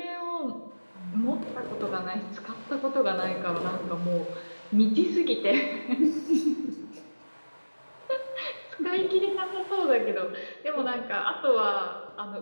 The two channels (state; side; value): inverted; both; correlation -1.00